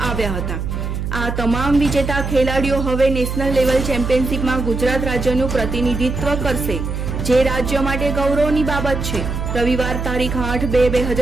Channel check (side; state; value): right; noise; hum, 4 dB below the sound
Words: આવ્યા હતા। આ તમામ વિજેતા ખેલાડીઓ હવે નેશનલ લેવલ ચેમ્પિયનશિપમાં ગુજરાત રાજ્યનું પ્રતિનિધિત્વ કરશે, જે રાજ્ય માટે ગૌરવની બાબત છે। રવિવાર તારીખ